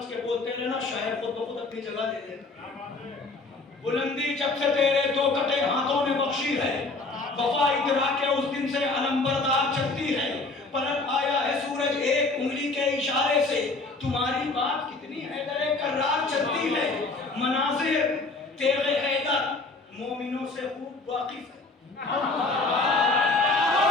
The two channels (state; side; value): quieter; right; 3.5 dB